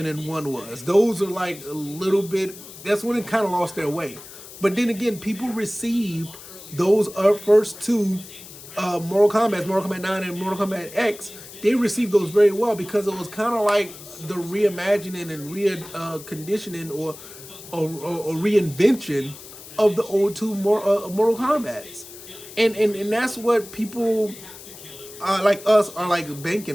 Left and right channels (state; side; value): noise; left; hiss, 16 dB below the sound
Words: and 1 was. Those are like a little bit, that's when it kind of lost their way. But then again, people received those first two Mortal Kombat 9 and Mortal Kombat X, they received those very well, because it was kind of like the reimagining and reconditioning or reinvention of the old two Mortal Kombats. And that's what people like us are like